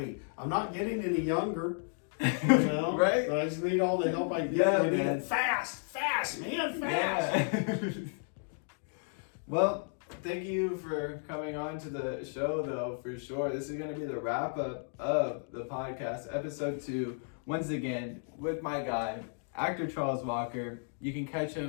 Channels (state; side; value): silent; right; 56 dB below the other